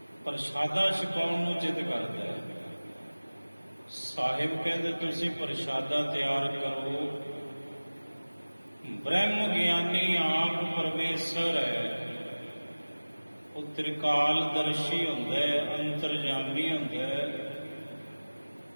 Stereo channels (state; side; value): inverted; both; correlation -1.00